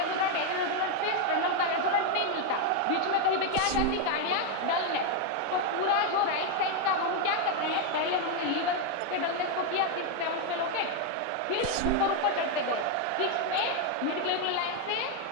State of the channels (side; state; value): both; different; correlation 0.01